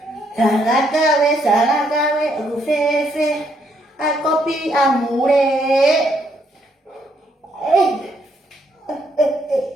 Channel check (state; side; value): normal; both; correlation 0.72